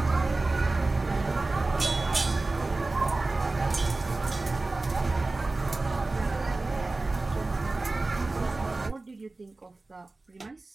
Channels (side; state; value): left; quieter; 3.2 dB